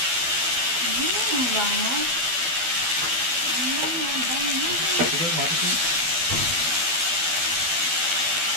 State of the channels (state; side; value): late; left; 12 ms